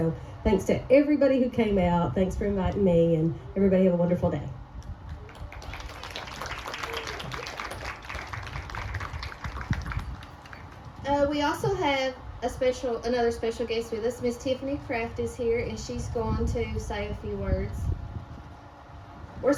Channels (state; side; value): identical; both; correlation 1.00